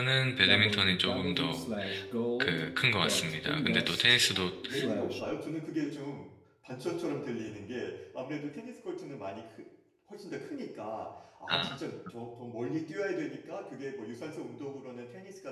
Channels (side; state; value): both; identical; correlation 1.00